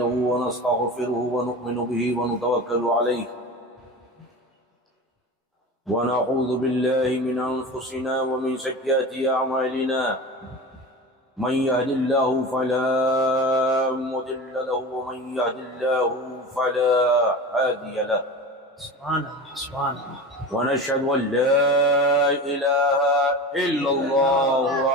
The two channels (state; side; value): normal; both; correlation 0.31